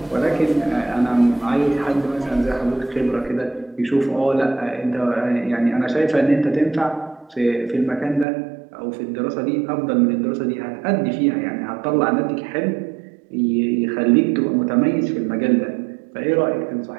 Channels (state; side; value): drops out; left; at 8.2 s